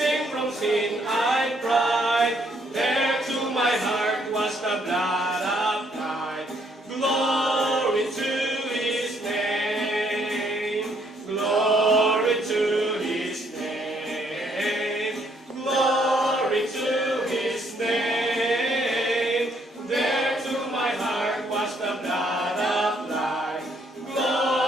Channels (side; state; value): both; normal; correlation 0.69